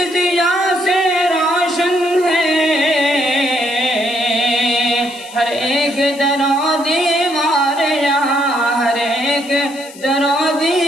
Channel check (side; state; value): left; noise; hiss, 19 dB below the sound